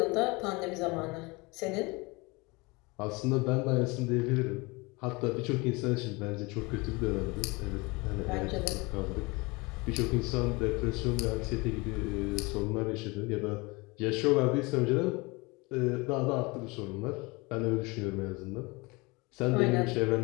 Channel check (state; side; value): quieter; right; 25.5 dB